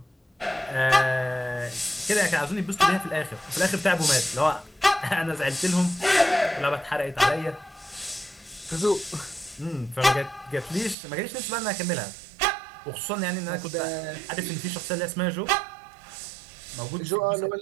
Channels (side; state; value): left; drops out; at 11.0 s